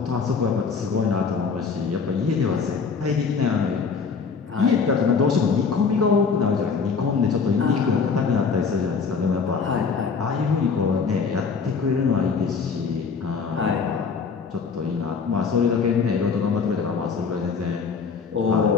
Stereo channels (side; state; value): right; quieter; 5.4 dB